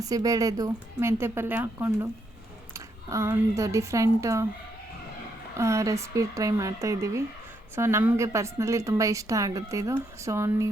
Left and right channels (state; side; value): normal; both; correlation 0.77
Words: ಮೆಂತ್ಯ ಪಲ್ಯ ಹಾಕ್ಕೊಂಡು ಒಂದು ಡಿಫ್ರೆಂಟ್ ರೆಸಿಪಿ ಟ್ರೈ ಮಾಡ್ತಾಯಿದ್ದೀವಿ. ಸೊ ನಮಗೆ ಪರ್ಸ್ನಲಿ ತುಂಬ ಇಷ್ಟ ಆಗುತ್ತೆ ಇದು. ಸೊ